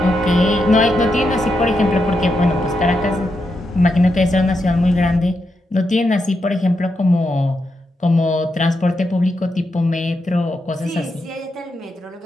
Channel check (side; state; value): both; normal; correlation 0.84